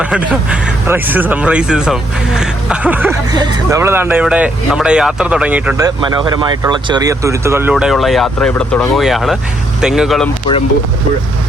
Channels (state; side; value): normal; both; correlation 0.73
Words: നമ്മൾ താണ്ട ഇവിടെ നമ്മുടെ യാത്ര തുടങ്ങിയിട്ടുണ്ട്. മനോഹരമായിട്ടുള്ള ചെറിയ തുരുത്തുകളിലൂടെയുള്ള യാത്ര ഇവിടെ തുടങ്ങുകയാണ്. തെങ്ങുകളും പുഴകളും